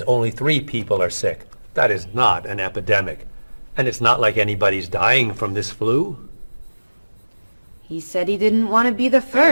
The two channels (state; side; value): inverted; both; correlation -1.00